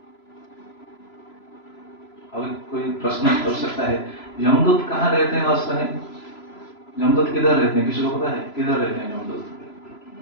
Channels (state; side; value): late; right; 3.0 ms